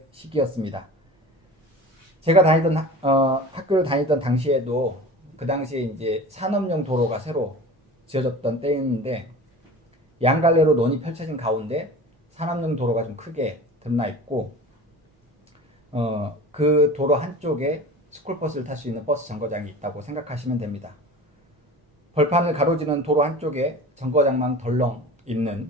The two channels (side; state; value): both; normal; correlation 0.37